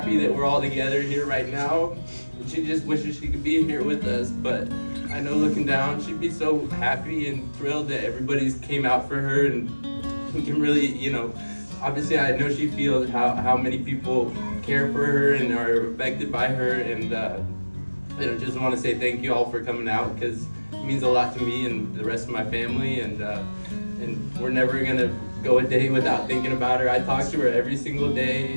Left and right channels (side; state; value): both; inverted; correlation -1.00